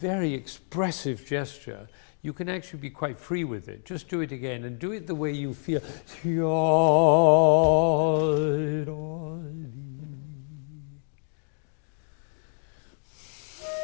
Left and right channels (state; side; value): silent; right; digital silence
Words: expressive gesture, you can actually be quite free with it. Just do it again and do it the way you feel.